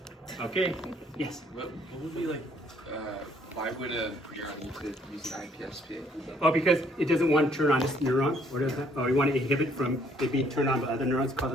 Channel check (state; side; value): normal; both; correlation 0.65